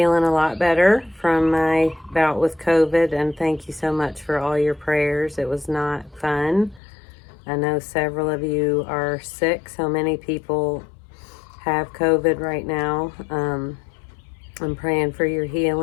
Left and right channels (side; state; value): right; drops out; at 6.8 s